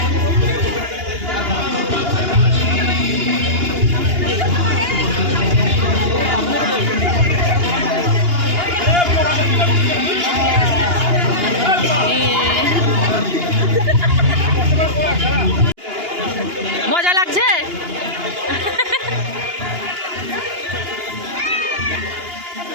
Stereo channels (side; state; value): left; late; 2.8 ms